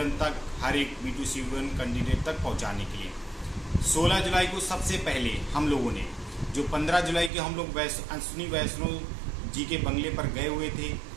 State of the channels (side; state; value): left; drops out; at 7.3 s